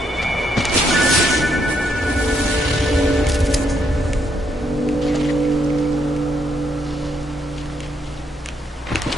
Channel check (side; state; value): both; normal; correlation 0.75